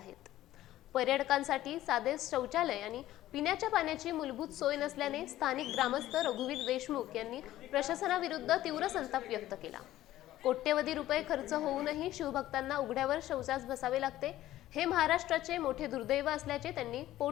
पर्यटकांसाठी साधे शौचालय आणि पिण्याच्या पाण्याची मूलभूत सोय नसल्याने स्थानिक ग्रामस्थ रघुवीर देशमुख यांनी प्रशासनाविरुद्ध तीव्र संताप व्यक्त केला। कोट्यवधी रुपये खर्च होऊनही शिवभक्तांना उघड्यावर शौचास बसावे लागते, हे महाराष्ट्राचे मोठे दुर्दैव असल्याचे त्यांनी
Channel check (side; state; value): right; quieter; 14.5 dB